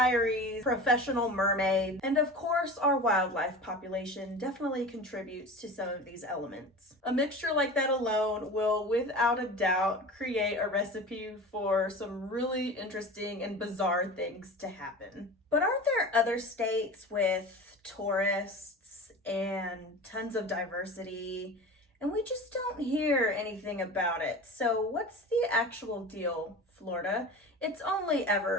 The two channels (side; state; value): both; normal; correlation 0.34